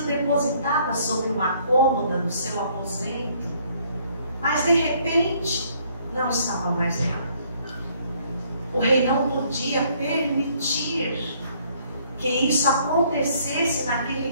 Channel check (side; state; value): both; inverted; correlation -0.64